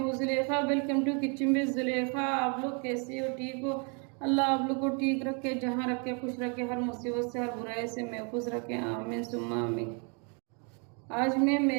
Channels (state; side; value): quieter; left; 36.8 dB